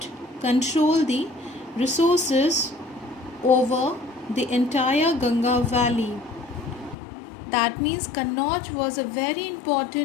control the resources over the entire Ganga valley. That means Kannauj was a very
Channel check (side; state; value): right; drops out; at 7.0 s